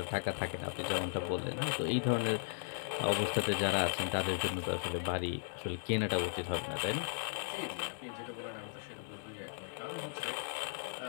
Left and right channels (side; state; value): right; silent; digital silence